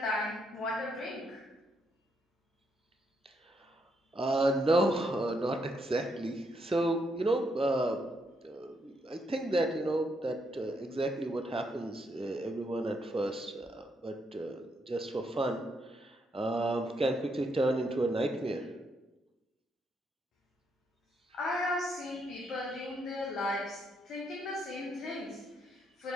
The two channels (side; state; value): both; normal; correlation 0.77